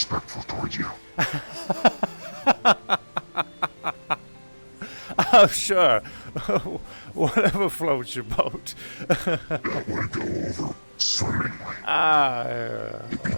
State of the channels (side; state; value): both; inverted; correlation -1.00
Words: toward you. Oh, sure. Whatever floats your boat. That would go over swimmingly. It'd be